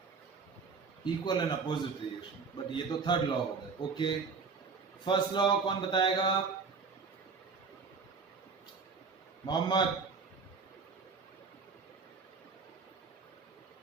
Equal and opposite reaction, but ये तो थर्ड लॉ हो गया। ओके, फर्स्ट लॉ कौन बताएगा? Mohammad.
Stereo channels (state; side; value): quieter; left; 5.0 dB